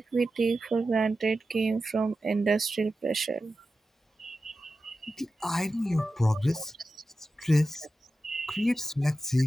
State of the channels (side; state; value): both; normal; correlation 0.92